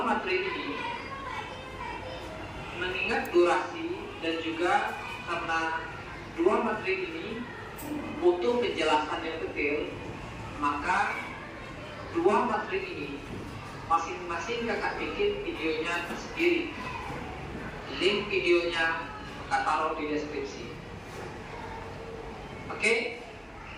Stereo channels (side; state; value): both; identical; correlation 1.00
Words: materi ini mengingat durasi dan juga karena dua materi ini butuh penjelasan yang detail, maka dua materi ini masing-masing kakak bikin videonya tersendiri. Link videonya kakak taruh di deskripsi. Oke,